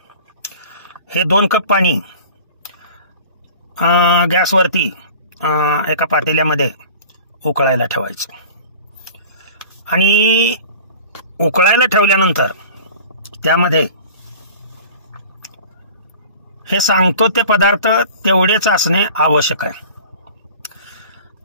हे 2 कप पाणी गॅसवरती एका पातेल्यामध्ये उकळायला ठेवायचं आणि उकळायला ठेवल्यानंतर त्यामध्ये हे सांगतो ते पदार्थ तेवढेच असणे आवश्यक आहे.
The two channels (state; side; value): inverted; both; correlation -0.42